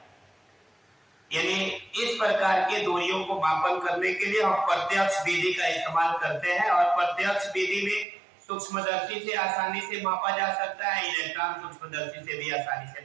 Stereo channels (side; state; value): left; drops out; at 8.1 s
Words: यानी इस प्रकार के दूरियों को मापन करने के लिए हम प्रत्यक्ष विधि का इस्तेमाल करते हैं और प्रत्यक्ष विधि में सूक्ष्मदर्शी से आसानी से मापा जा सकता है, इलेक्ट्रॉन सूक्ष्मदर्शी से भी आसानी से